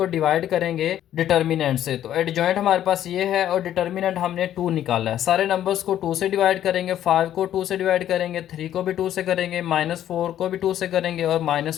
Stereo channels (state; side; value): quieter; right; 11.5 dB